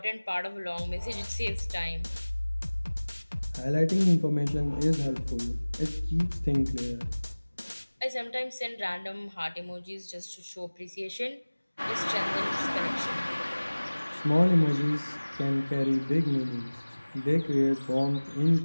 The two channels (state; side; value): inverted; both; correlation -1.00